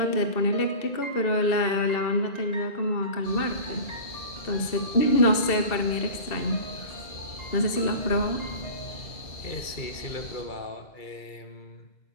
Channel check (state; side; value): late; right; 2.6 ms